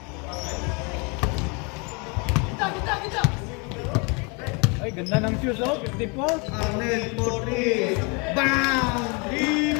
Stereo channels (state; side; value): quieter; right; 31.9 dB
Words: Ay, ganda ng shoes oh. 54. Arnel for 3. Bang!